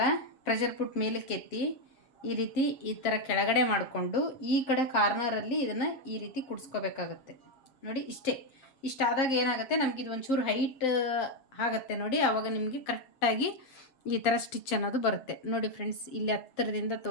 ಪ್ರೆಷರ್ ಪುಟ್ ಮೇಲಕ್ಕೆ ಎತ್ತಿ ಈ ರೀತಿ ಈ ಥರ ಕೆಳಗಡೆ ಮಾಡಿಕೊಂಡು ಈ ಕಡೆ ಕಾರ್ನರಲ್ಲಿ ಇದನ್ನು ಈ ರೀತಿ ಕುಡಿಸ್ಕೋಬೇಕಾಗತ್ತೆ. ನೋಡಿ ಇಷ್ಟಾದಾಗ ಏನಾಗುತ್ತೆ, ನಮಗಿದು ಒಂಚೂರು ಹೈಟ್ ಆಗುತ್ತೆ ನೋಡಿ, ಆವಾಗ ನಿಮಗೆ ಕರೆಕ್ಟಾಗಿ ಈ ಥರ ಸ್ಟಿಚ್ ಅನ್ನೋದು ಬರುತ್ತೆ. ನೋಡಿ ಫ್ರೆಂಡ್ಸ್, ಇಲ್ಲಿ ಹತ್ತಿರದಿಂದ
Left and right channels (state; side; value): late; right; 7.4 ms